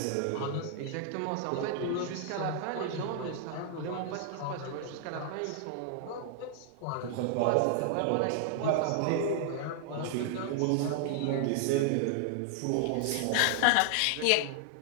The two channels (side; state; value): both; different; correlation 0.00